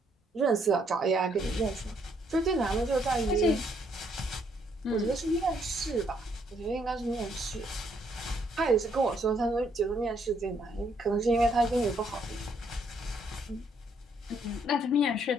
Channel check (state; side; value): normal; both; correlation 0.70